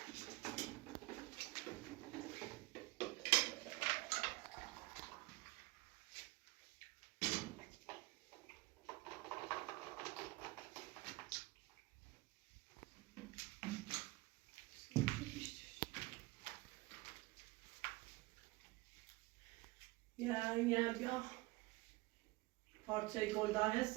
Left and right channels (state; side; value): quieter; left; 22.9 dB